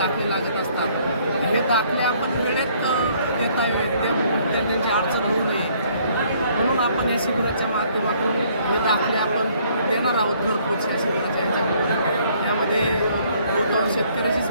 लागत असतात. हे दाखले आपण वेळेत देता येईल त्या त्यांची अडचण होऊ नये म्हणून आपण या शिबिराच्या माध्यमातून हे दाखले आपण देणार आहोत घरपोच या शिबिराच्या ह्याच्यामध्ये. यामध्ये बहुतांश शेतकऱ्याचीच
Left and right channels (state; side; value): inverted; both; correlation -0.63